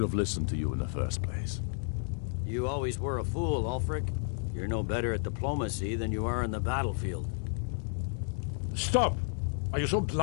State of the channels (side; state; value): right; silent; 57 dB below the other